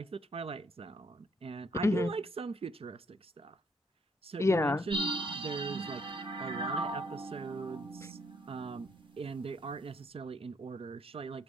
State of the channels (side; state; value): both; normal; correlation 0.69